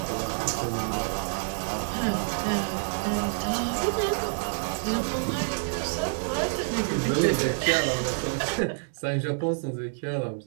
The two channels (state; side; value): silent; left; digital silence